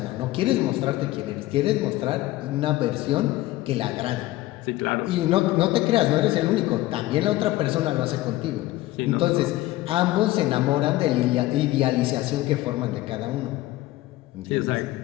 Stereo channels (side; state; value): right; quieter; 17.0 dB